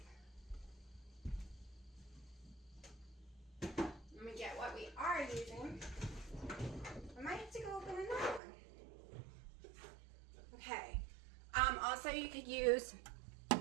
Let me get what we are using. I might have to go open another one. Okay. Also, you could use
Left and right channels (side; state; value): left; drops out; at 8.4 s